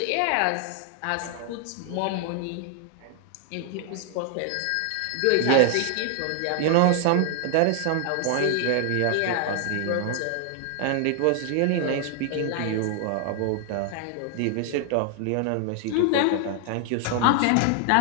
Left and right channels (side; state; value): both; different; correlation 0.00